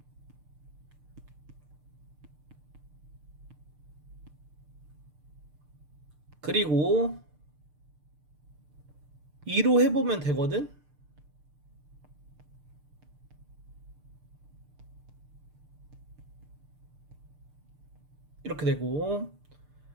그리고 2로 해보면 되거든? 이렇게 되고,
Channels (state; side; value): late; left; 6.7 ms